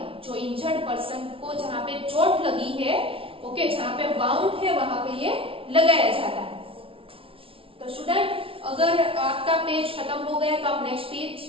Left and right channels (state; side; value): late; left; 0.26 ms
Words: जो इंजर्ड पर्सन को जहां पे चोट लगी है, ओके, जहां पे बाउंड है वहां पे ये लगाया जाता है। तो स्टूडेंट, अगर आपका पेज खत्म हो गया तो आप नेक्स्ट